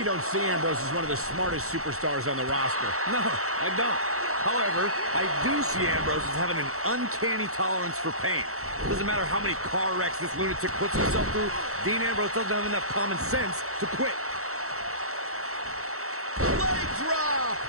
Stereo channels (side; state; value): left; late; 0.64 ms